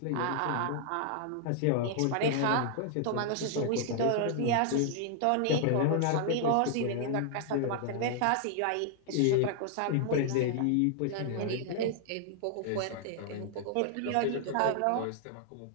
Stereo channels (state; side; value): different; both; correlation -0.01